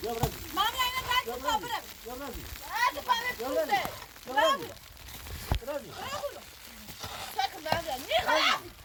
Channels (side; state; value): both; identical; correlation 1.00